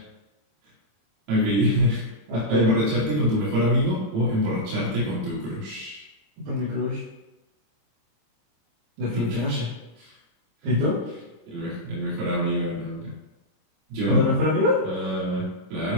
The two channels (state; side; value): late; left; 26 ms